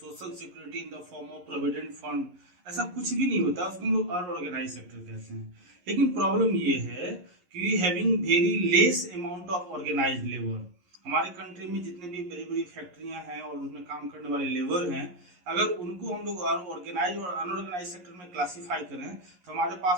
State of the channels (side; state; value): left; late; 11 ms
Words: security in the form of provident fund, ऐसा कुछ भी नहीं होता, उसको हम लोग अनऑर्गेनाइज सेक्टर कहते हैं। लेकिन प्रॉब्लम ये है कि we having very less amount of organised labour. हमारे कंट्री में जितने भी बड़ी बड़ी फैक्ट्रियां हैं और उसमें काम करने वाले लेबर हैं, अगर उनको हम लोग ऑर्गेनाइज और अनऑर्गेनाइज सेक्टर में क्लासीफाई करें तो हमारे